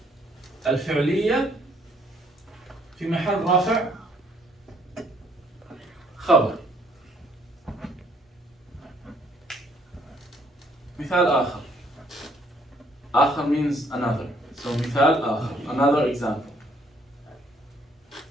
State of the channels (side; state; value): both; normal; correlation 0.65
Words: الفعلية في محل رافع خبر. مثال آخر. آخر means another. So مثال آخر. Another example.